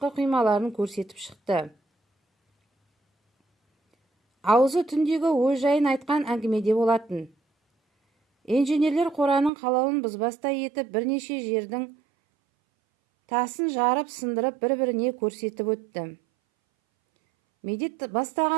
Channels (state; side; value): drops out; left; at 9.5 s